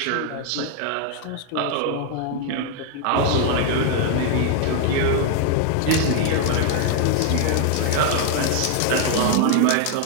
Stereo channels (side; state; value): both; different; correlation 0.00